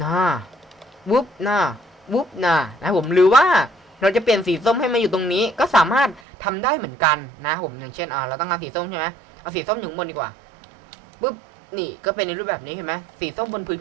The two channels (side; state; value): left; drops out; at 6.2 s